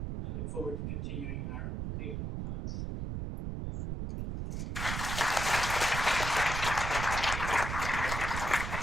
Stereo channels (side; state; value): right; noise; rumble, 3 dB below the sound